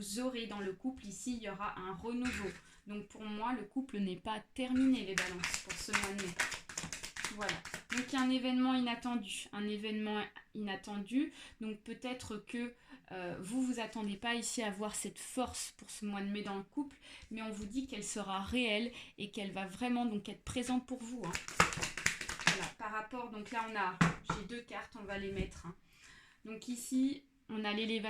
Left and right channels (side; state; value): both; identical; correlation 1.00